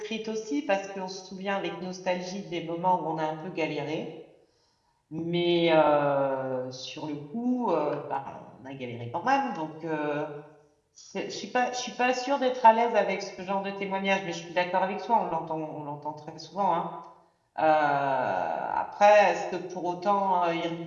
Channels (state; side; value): identical; both; correlation 1.00